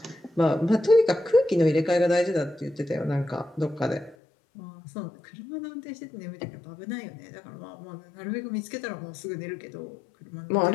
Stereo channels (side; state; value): right; drops out; at 4.2 s